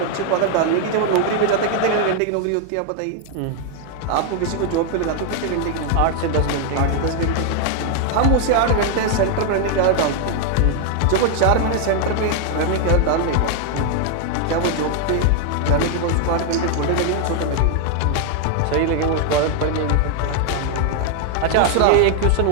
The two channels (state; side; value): different; both; correlation 0.00